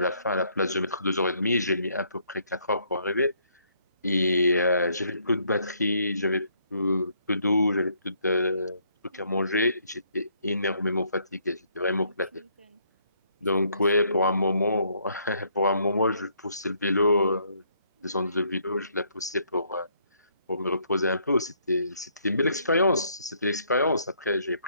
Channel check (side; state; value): both; inverted; correlation -0.69